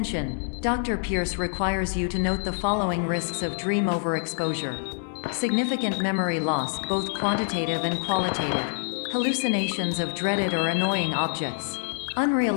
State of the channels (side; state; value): right; silent; 61 dB below the other